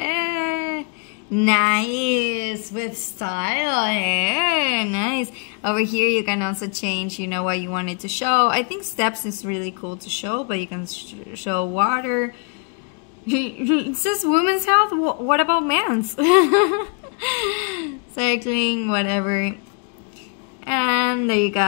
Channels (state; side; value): quieter; right; 35.0 dB